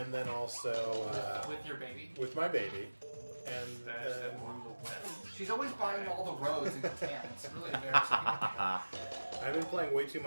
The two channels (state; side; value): inverted; both; correlation -1.00